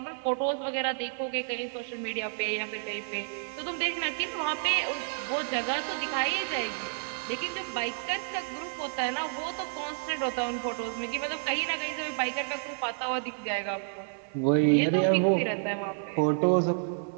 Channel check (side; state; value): left; silent; 56 dB below the other